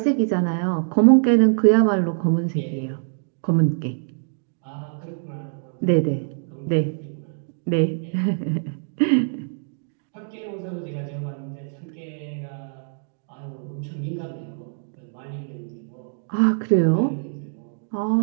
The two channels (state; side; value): silent; left; digital silence